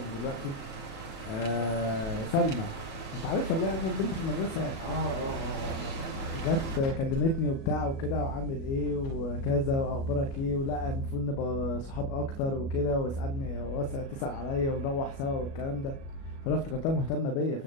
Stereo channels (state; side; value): late; right; 36 ms